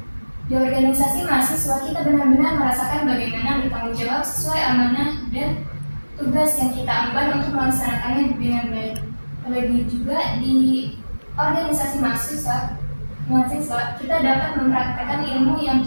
Di organisasi mahasiswa kita benar-benar merasakan bagaimana bertanggung jawab sesuai amanah dan tugas yang kita emban untuk melaksanakannya dengan baik. Terlebih juga di organisasi mahasiswa kita dapat mempraktikkan ilmu yang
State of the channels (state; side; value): inverted; both; correlation -1.00